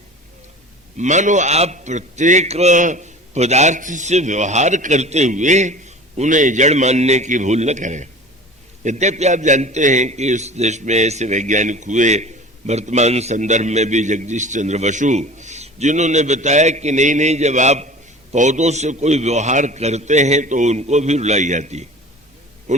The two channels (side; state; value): both; normal; correlation 0.40